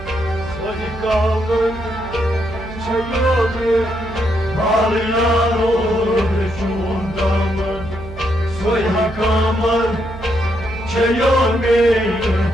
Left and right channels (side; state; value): right; noise; hum, 13 dB below the sound